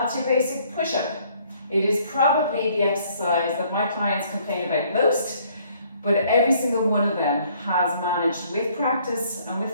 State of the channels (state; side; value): inverted; both; correlation -0.63